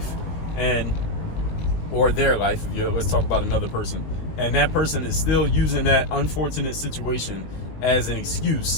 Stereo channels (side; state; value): right; late; 19 ms